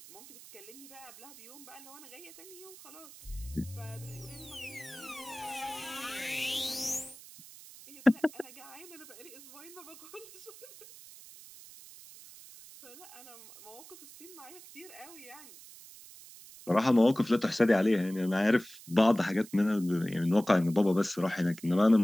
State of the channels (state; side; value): noise; right; hiss, 18 dB below the sound